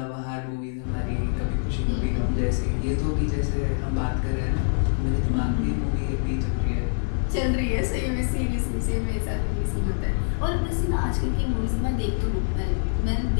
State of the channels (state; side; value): silent; right; digital silence